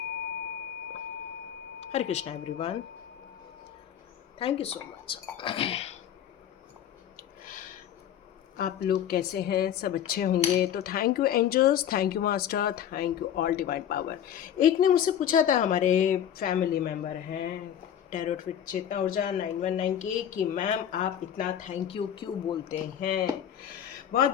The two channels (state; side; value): quieter; right; 9.7 dB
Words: Hare Krishna everyone, thank you so much. आप लोग कैसे हैं? सब अच्छे होंगे तो thank you angels, thank you master, thank you all divine power. एक ने मुझसे पूछा था, हमारे फैमिली मेम्बर हैं टैरोट विद चेतना ऊर्जा 919 के, कि मैम आप इतना थैंक यू क्यों बोलते हैं। बहुत